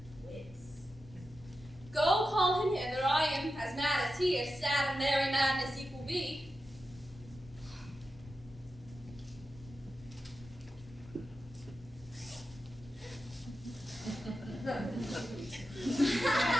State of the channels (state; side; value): normal; both; correlation 0.91